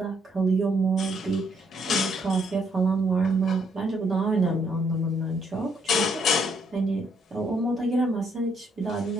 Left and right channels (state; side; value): normal; both; correlation 0.71